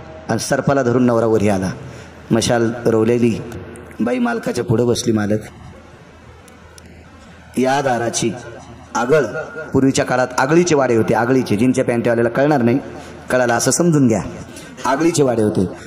आणि सर्पाला धरून नवरा वरी आला. मशाल रोवलेली बाई मालकाच्या पुढे बसली. मालक, या दाराची आगळ, पूर्वीच्या काळात आगळीचे वाडे होते. आगळीचे, जिनच्या पॅन्टवाल्याला कळणार नाही, कळाला असं समजून घ्या. आगळीचे वाडे होते.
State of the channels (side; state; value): both; identical; correlation 1.00